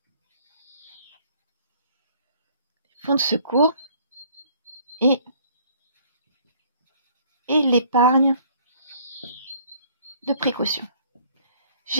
Et l'épargne de précaution.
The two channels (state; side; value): inverted; both; correlation -0.59